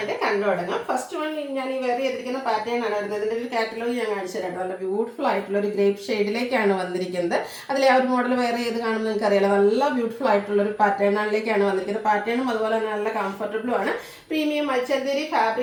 കണ്ടു തുടങ്ങാം. ഫസ്റ്റ് വൺ ഞാൻ ഈ വെയർ ചെയ്തിരിക്കുന്ന പാറ്റേൺ ആണ് വരുന്നത്. ഇതിൻ്റെ ഒരു കാറ്റലോഗ് ഞാൻ കാണിച്ചു തരാം. നല്ല ബ്യൂട്ടിഫുൾ ആയിട്ടുള്ള ഒരു ഗ്രേപ്പ് ഷെയ്ഡിലേക്കാണ് വന്നിരിക്കുന്നത്. അതിലെ ആ ഒരു മോഡൽ വെയർ ചെയ്ത് കാണുമ്പോൾ നിങ്ങൾക്ക് അറിയാലോ, നല്ല ബ്യൂട്ടിഫുൾ ആയിട്ടുള്ള ഒരു പാറ്റേണിലേക്കാണ് വന്നിരിക്കുന്നത്. പാറ്റേണും അതുപോലെ തന്നെ നല്ല കംഫർട്ടബിളും ആണ്. പ്രീമിയം മൽച്ചന്തേരി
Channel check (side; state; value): both; identical; correlation 1.00